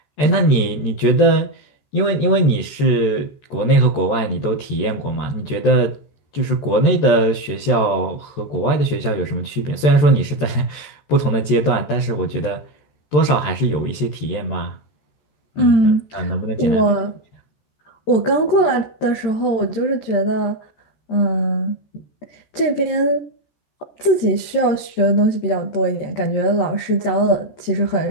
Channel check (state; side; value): late; right; 14 ms